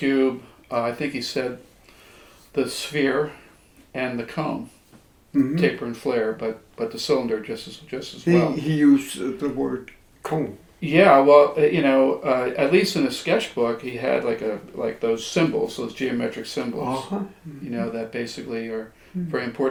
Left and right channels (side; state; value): both; identical; correlation 1.00